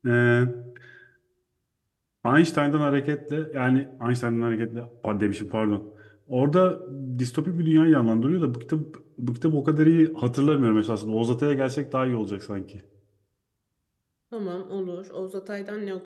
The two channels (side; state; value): both; identical; correlation 1.00